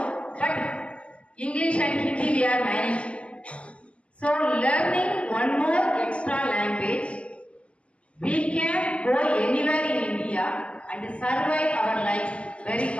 but English and Hindi we are managing. So learning one more extra language, we can go anywhere in India and survive our life very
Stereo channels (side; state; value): right; late; 0.059 ms